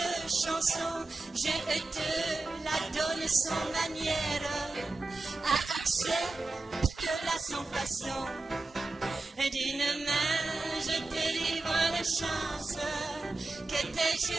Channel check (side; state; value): left; quieter; 3.3 dB